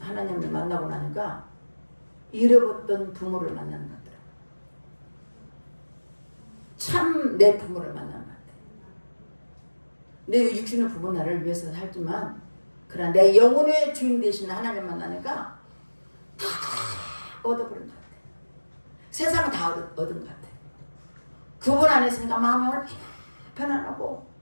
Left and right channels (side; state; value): both; inverted; correlation -1.00